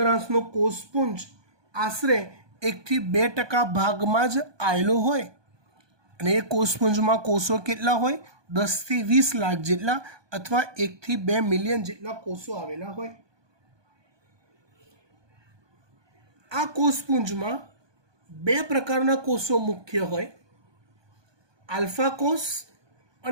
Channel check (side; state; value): left; late; 1.2 ms